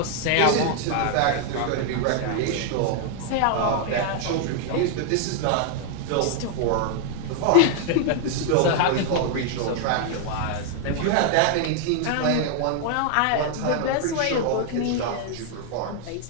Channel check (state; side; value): different; both; correlation 0.00